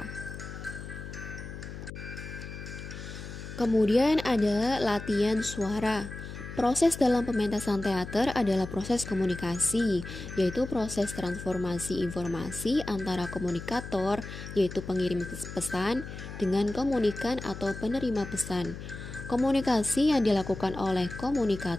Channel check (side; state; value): left; noise; hum, 10 dB below the sound